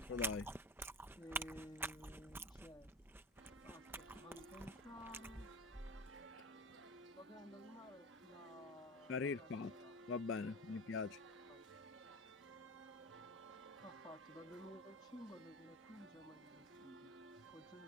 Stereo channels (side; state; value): both; normal; correlation 0.30